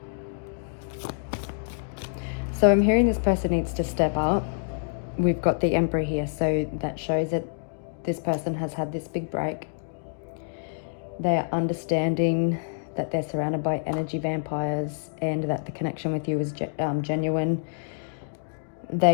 So I'm hearing this person needs to step up. We've got the Emperor here, so that shows that this person has had this big break. They are understanding that they're surrounded by energy vampires and that the connection with you is genuine.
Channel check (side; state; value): right; silent; digital silence